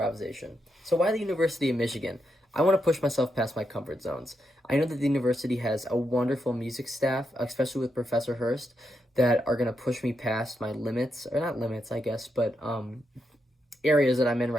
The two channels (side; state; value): both; normal; correlation 0.83